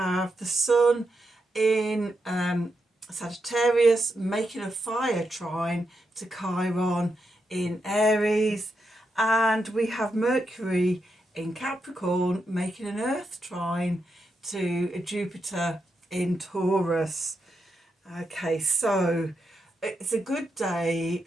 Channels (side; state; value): both; normal; correlation 0.84